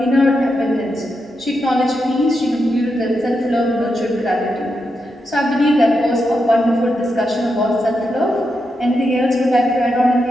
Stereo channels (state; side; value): normal; both; correlation 0.85